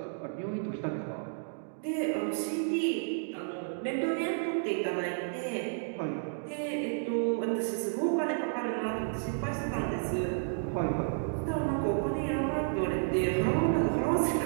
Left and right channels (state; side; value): silent; left; digital silence